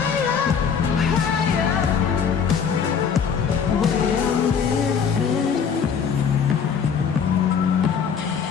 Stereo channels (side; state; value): right; quieter; 6.8 dB